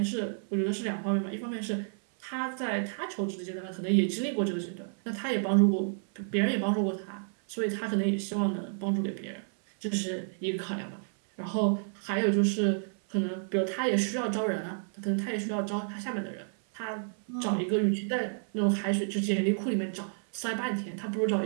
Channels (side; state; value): left; silent; 57 dB below the other